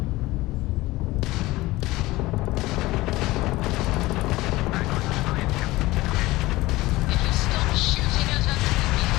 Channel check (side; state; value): right; quieter; 19.1 dB